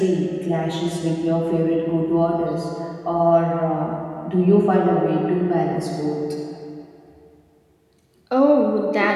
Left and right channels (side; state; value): both; identical; correlation 1.00